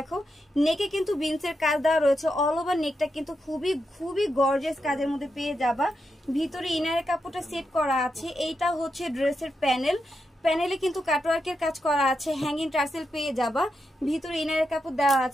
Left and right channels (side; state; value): both; normal; correlation 0.85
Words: নেকে কিন্তু বিনসের কাজ দেওয়া রয়েছে। অল ওভার নেকটা কিন্তু খুবই গর্জিয়াস কাজের মধ্যে পেয়ে যাবা। ভিতরে ইনারের কাপড়টা সেট করা আছে। এইটা হচ্ছে ড্রেসের প্যানেলে কিন্তু কাটওয়ার্কের কাজ করা আছে, হ্যাঙ্গিং টার্সেল পেয়ে যাবা। ভিতরে ইনারের কাপড় দেওয়া